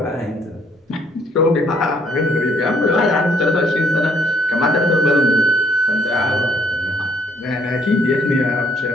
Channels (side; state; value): both; normal; correlation 0.66